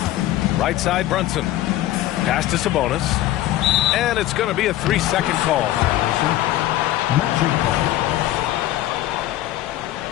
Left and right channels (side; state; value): right; quieter; 14.5 dB